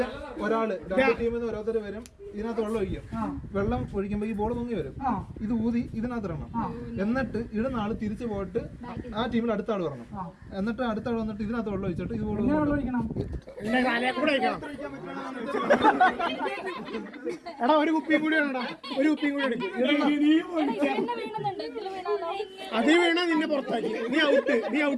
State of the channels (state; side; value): identical; both; correlation 1.00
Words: ഒരാള് രണ്ട് ടീമിൽ നിന്ന് ഓരോരുത്തർ വരും, ഇതിനകത്ത് വെള്ളം ഒഴിക്കും. വെള്ളം ഒഴിക്കുമ്പോ ഈ ബോൾ പൊങ്ങി വരും, ഇത് ഊതി ഇതിനകത്ത് ഇടണം. എന്നിട്ട് ഇടുന്ന ആള് തിരിച്ചു പോയിട്ട് ആ ടീമിൽ അടുത്ത ആള് വരണം. എന്നിട്ട് അടുത്ത ആൾ വന്നിട്ട് ഇതിനകത്ത് വെള്ളം ഒഴിച്ചിട്ട് ഇത് ബോൾ എടാ ഒരു കുപ്പിയും കൂടി വേണടാ, ഒരു കുപ്പിയും കൂടി എടുക്കും. അതേ വീണ നിന്നെ പുറത്താക്കി. നീ